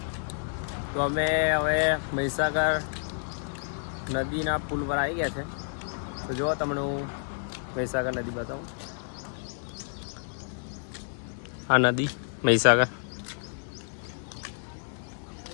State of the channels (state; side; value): silent; right; 58 dB below the other